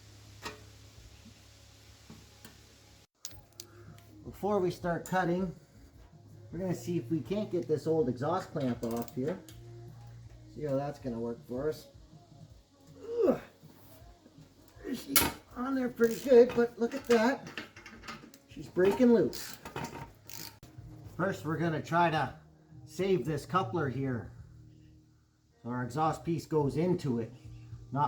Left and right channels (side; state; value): both; identical; correlation 1.00